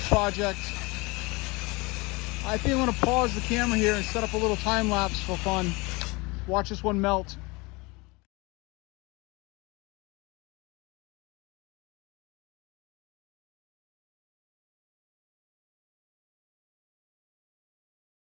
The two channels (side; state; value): right; quieter; 25.4 dB